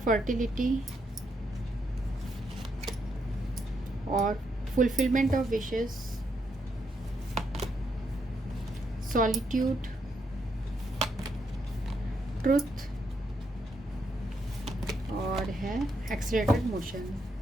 और fulfilment of wishes, solitude, truth और है एक्सीलरेटेड मोशन।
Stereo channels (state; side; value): normal; both; correlation 0.78